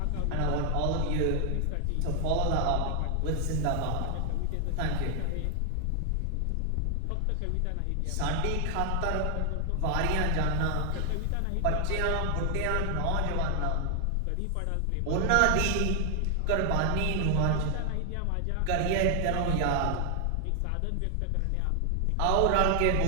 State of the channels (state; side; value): different; both; correlation 0.00